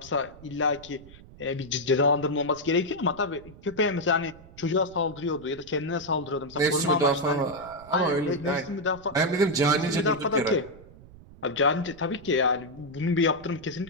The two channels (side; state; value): right; noise; rumble, 20 dB below the sound